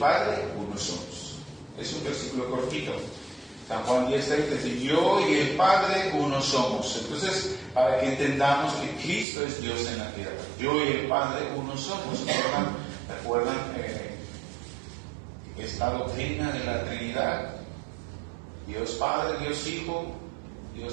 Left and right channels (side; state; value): left; drops out; at 9.2 s